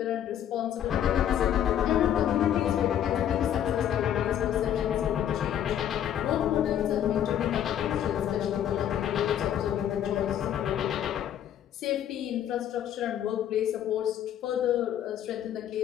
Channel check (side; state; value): right; quieter; 10.4 dB